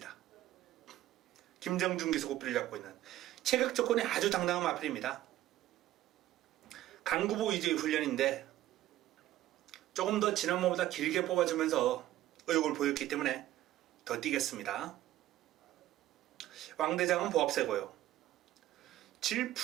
김정준 기수 고삐를 잡고 있는 체격 조건이 아주 당당한 마필입니다. 강구보 위주의 훈련인데 조금 더 지난번보다 길게 뽑아주면서 의욕을 보였기 때문에 더 뛰겠습니다. 왕대장은 보합세고요.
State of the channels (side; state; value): left; quieter; 14.2 dB